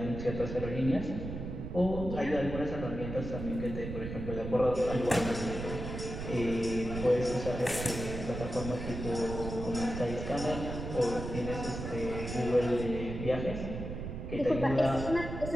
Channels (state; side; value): noise; right; rumble, 6 dB below the sound